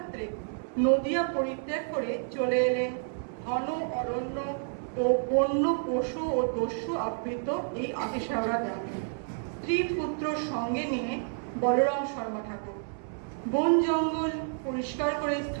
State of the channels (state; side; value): silent; left; 58 dB below the other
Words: নদিয়া পরিত্যাগ করে চলে এলেন ঘন অরণ্য ও বন্য পশু ও দস্যু আবৃত এই আতিশাওড়া গ্রামে স্ত্রী পুত্র সঙ্গে নিয়ে বলরাম শর্মা ঠাকুর বন জঙ্গল পরিষ্কার করে